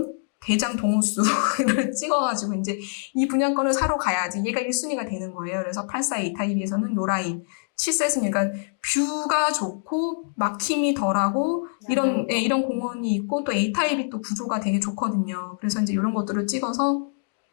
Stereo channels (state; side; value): silent; right; digital silence